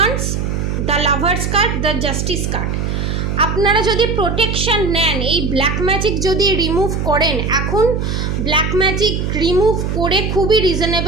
the lovers card, the justice card. আপনারা যদি প্রোটেকশন নেন, এই ব্ল্যাক ম্যাজিক যদি রিমুভ করেন, এখন ব্ল্যাক ম্যাজিক রিমুভ করে খুবই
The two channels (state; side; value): noise; right; hum, 1 dB below the sound